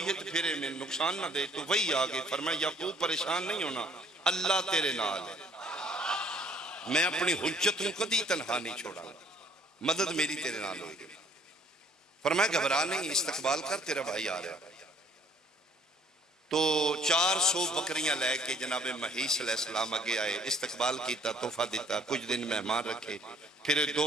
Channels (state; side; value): normal; both; correlation 0.60